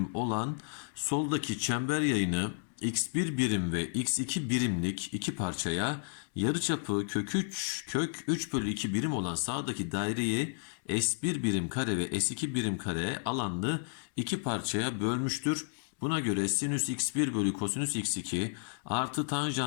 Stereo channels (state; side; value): silent; right; digital silence